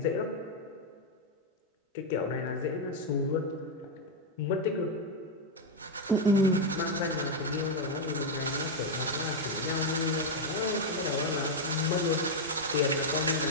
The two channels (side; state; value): both; normal; correlation 0.02